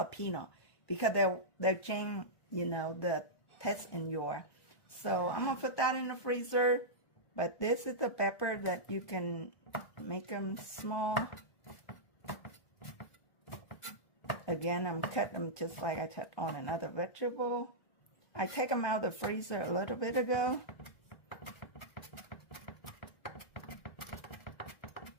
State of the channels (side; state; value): right; late; 1.2 ms